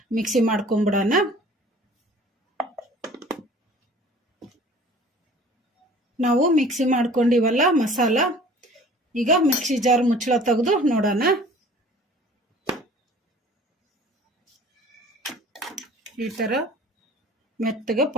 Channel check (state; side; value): normal; both; correlation 0.48